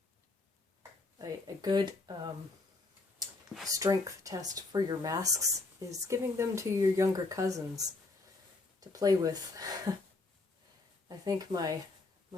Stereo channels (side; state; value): right; quieter; 3.4 dB